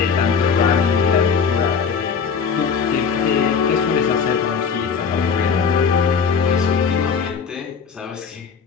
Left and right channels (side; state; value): right; quieter; 6.2 dB